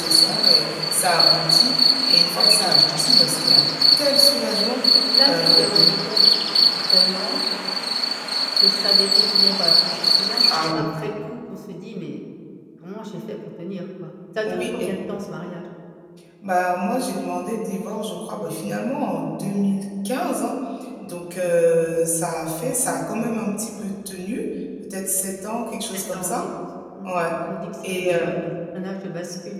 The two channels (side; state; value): both; identical; correlation 1.00